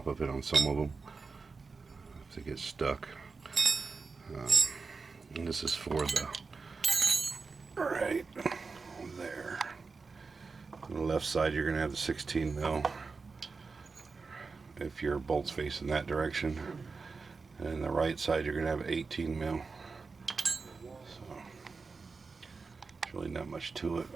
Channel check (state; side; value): quieter; left; 4.5 dB